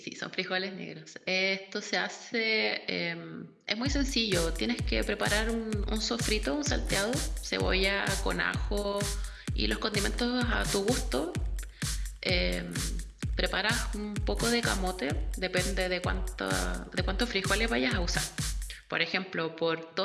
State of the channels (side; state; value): both; identical; correlation 1.00